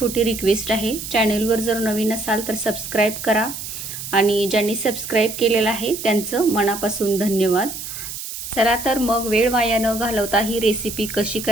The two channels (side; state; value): right; noise; hiss, 8 dB below the sound